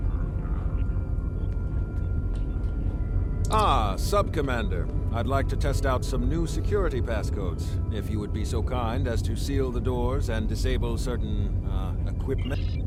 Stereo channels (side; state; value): both; identical; correlation 1.00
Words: Sub-Commander. I'd like to test out some new security passcodes, if you would be so kind as to seal the doors and disable certain, equipment.